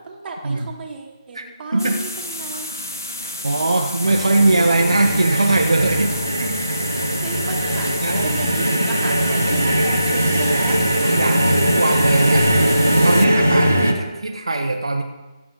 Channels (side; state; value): both; inverted; correlation -0.85